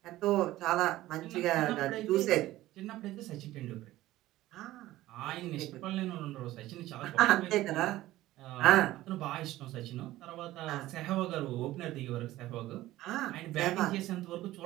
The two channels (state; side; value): quieter; left; 16.0 dB